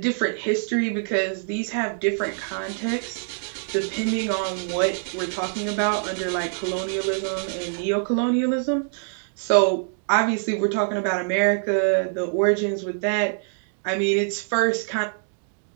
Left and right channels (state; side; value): silent; left; digital silence